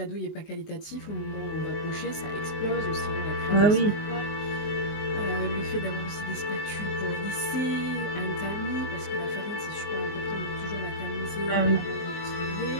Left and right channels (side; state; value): right; late; 19 ms